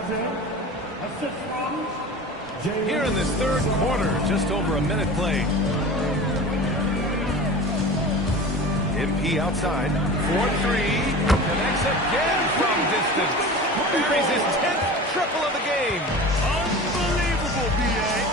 Here in this third quarter, just over a minute played. MP outside, 4-3, connects again from distance. Buries his 10th triple of the game. Unbelievable, B.A.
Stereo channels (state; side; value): normal; both; correlation 0.35